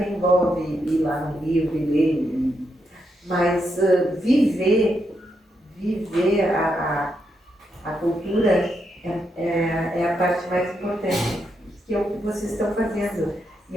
envolve ir lá no livro e ler, mas viver a cultura é a parte mais importante, que é o que vocês estão fazendo. E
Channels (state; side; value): normal; both; correlation 0.81